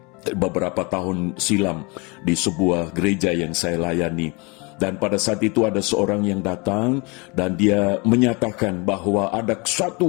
beberapa tahun silam di sebuah gereja yang saya layani. Dan pada saat itu ada seorang yang datang dan dia menyatakan bahwa ada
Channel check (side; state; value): right; quieter; 28.7 dB